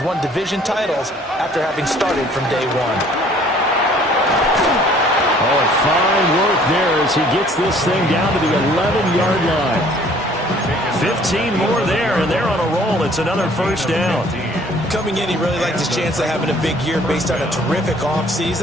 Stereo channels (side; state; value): both; normal; correlation 0.56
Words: won division titles after having started from day one. Oh, fine work there as he gets this thing down to the 11-yard line. 15 more there, and they're on a roll. It's another first down. Coming in, he really liked his chance of having a big year based on a terrific